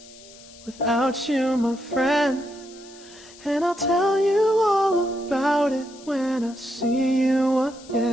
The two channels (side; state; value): left; noise; hiss, 21 dB below the sound